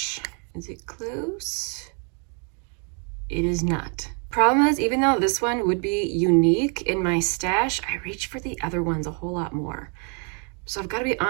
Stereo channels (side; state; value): left; quieter; 38.6 dB